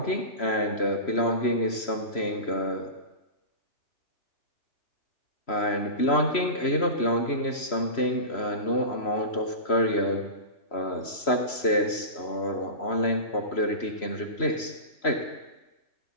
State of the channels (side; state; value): right; late; 3.0 ms